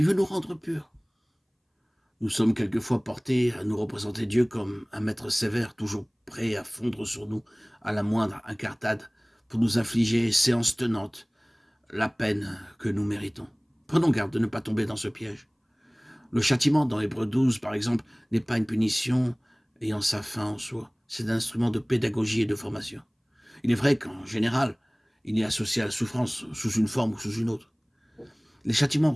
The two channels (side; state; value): both; identical; correlation 1.00